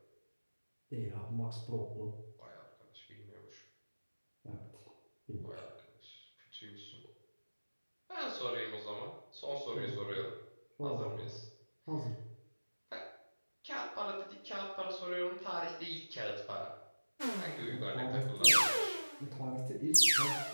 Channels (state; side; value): inverted; both; correlation -1.00